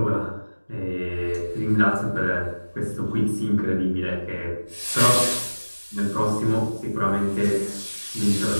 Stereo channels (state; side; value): inverted; both; correlation -1.00